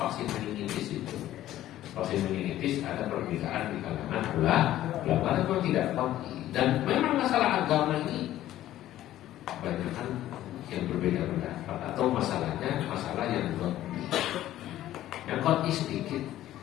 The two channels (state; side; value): quieter; right; 13.6 dB